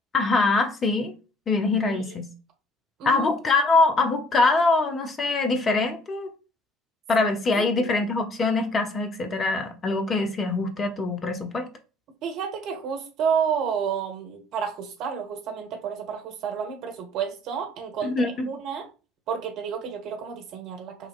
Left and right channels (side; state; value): both; normal; correlation 0.58